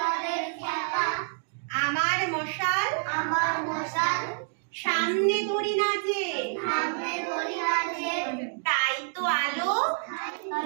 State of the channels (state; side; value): silent; left; digital silence